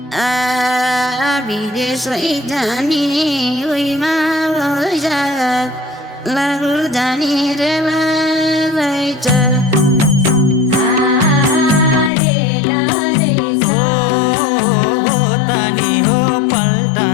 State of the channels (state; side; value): drops out; right; at 12.1 s